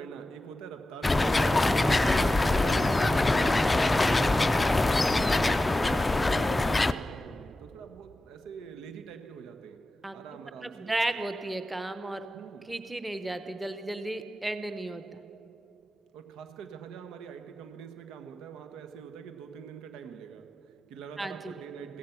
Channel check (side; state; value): both; normal; correlation 0.94